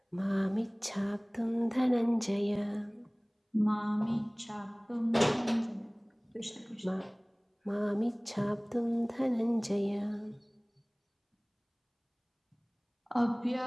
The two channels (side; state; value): both; identical; correlation 1.00